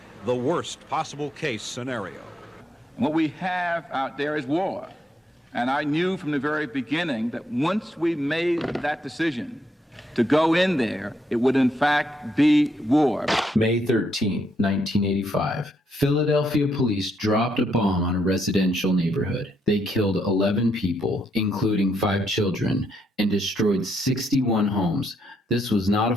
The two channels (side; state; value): both; normal; correlation 0.76